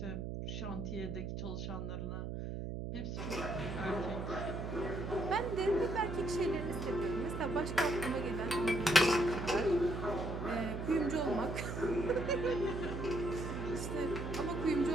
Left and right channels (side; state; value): right; noise; hum, 4 dB below the sound